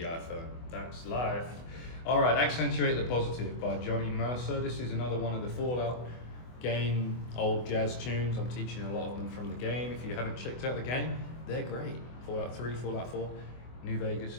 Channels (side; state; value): right; late; 24 ms